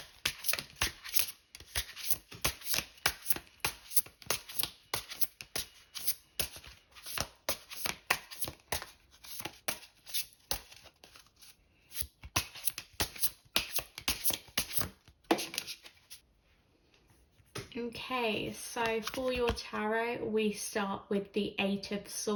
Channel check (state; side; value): identical; both; correlation 1.00